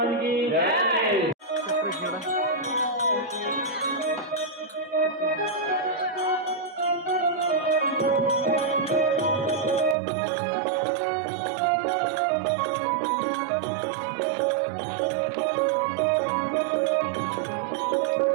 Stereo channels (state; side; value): drops out; left; at 10.0 s